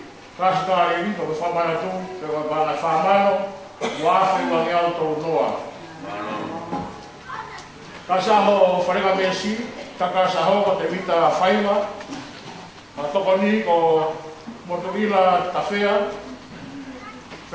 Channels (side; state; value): both; identical; correlation 1.00